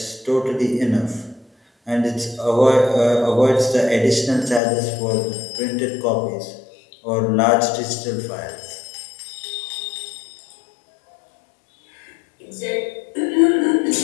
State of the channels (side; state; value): right; drops out; at 4.6 s